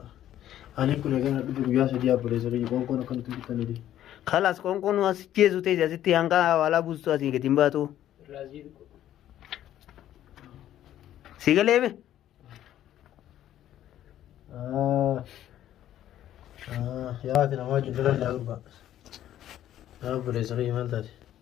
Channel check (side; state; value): right; quieter; 12.0 dB